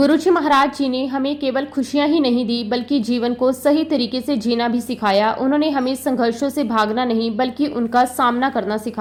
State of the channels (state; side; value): identical; both; correlation 1.00